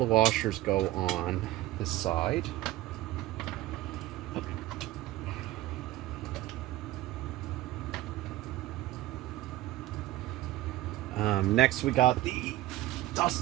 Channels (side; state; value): left; quieter; 16.0 dB